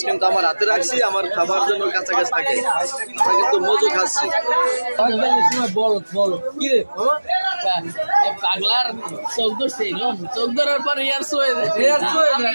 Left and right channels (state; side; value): inverted; both; correlation -1.00